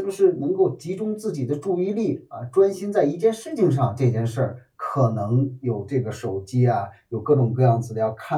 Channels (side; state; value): both; identical; correlation 1.00